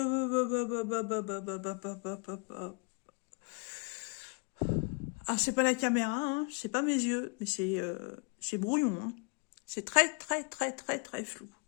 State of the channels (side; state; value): right; quieter; 34.7 dB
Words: Ah, c'est pas la caméra, hein, c'est pas mes yeux, mais c'est brouillon. Hein. C'est très, très, très, très, très flou.